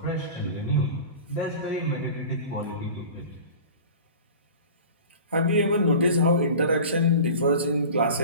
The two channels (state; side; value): inverted; both; correlation -0.38